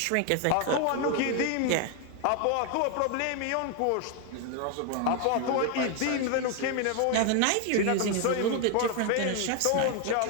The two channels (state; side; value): different; both; correlation 0.01